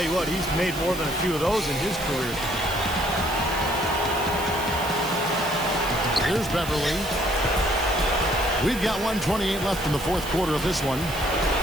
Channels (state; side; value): noise; right; hiss, 12 dB below the sound